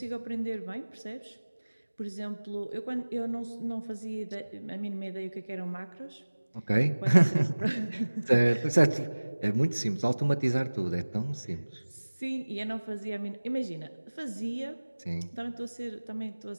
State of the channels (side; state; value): both; inverted; correlation -1.00